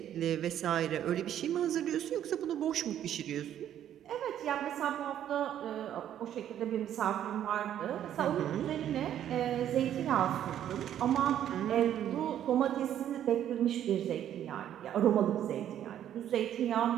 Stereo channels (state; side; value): quieter; left; 10.7 dB